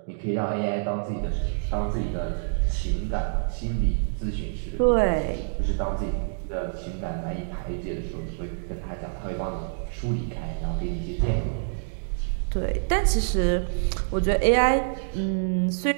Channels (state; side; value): silent; left; digital silence